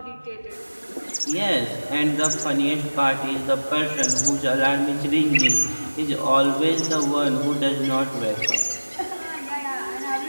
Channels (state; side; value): inverted; both; correlation -1.00